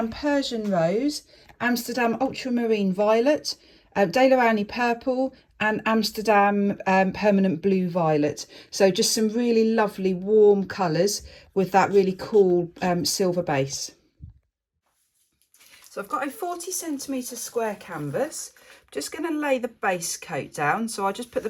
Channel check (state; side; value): identical; both; correlation 1.00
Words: Persian Rose, Amsterdam Ultramarine Violet, Daler-Rowney Purple, and Amsterdam Permanent Blue Violet. So just some really lovely warm colours with that really cool silver base. So I've got a 40 centimetre square canvas. Just going to lay the base coat down. So I'll just put the